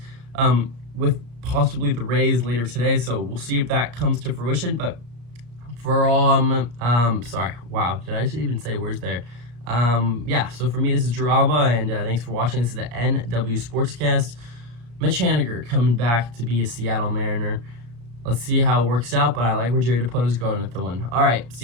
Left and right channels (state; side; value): late; left; 34 ms